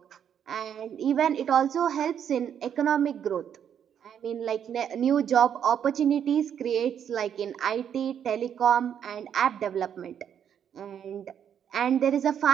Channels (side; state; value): left; quieter; 8.8 dB